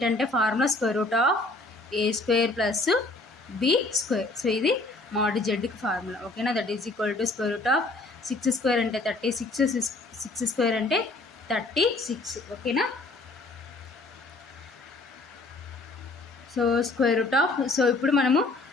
formula square root of a square plus b square. So ఇది mod zకి formula. ఓకేనా, that is equal to square root of 6 square అంటే 36, 6 square అంటే 36. ఓకేనా, so square root of, so ఇప్పుడు మనము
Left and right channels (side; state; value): right; quieter; 3.1 dB